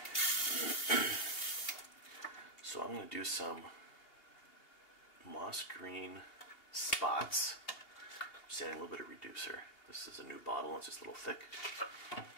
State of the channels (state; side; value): late; right; 2.8 ms